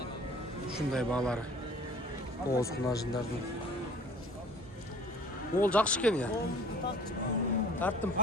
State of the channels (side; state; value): both; normal; correlation 0.51